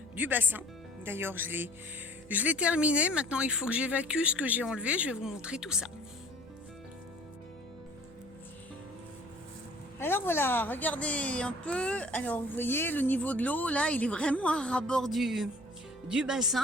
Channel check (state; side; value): noise; right; hum, 24 dB below the sound